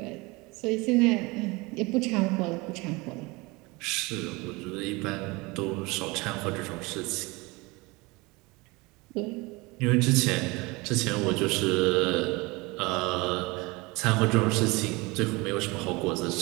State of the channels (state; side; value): quieter; left; 24.5 dB